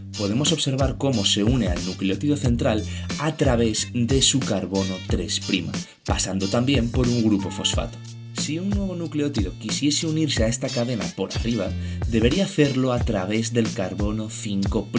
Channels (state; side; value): identical; both; correlation 1.00